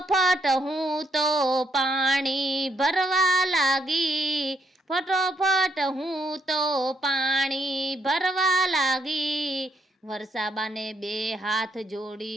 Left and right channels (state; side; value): normal; both; correlation 0.74